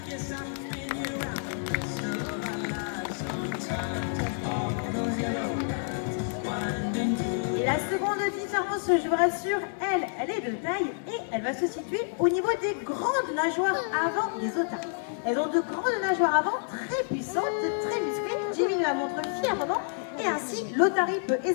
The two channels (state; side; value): silent; right; 59 dB below the other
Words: Et la seconde différence, je vous rassure, elle est de taille et elle va se situer au niveau des grandes nageoires avant des otaries. Elles ont de grandes nageoires avant très puissantes, très musclées. Jimmy nous la montre fièrement et ainsi l'otarie peut